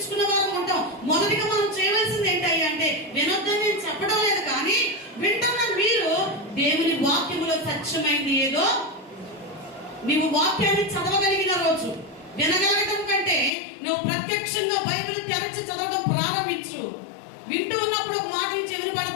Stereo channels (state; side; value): drops out; right; at 13.5 s